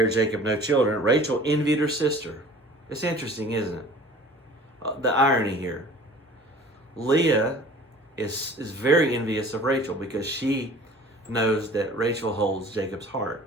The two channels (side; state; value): both; normal; correlation 0.46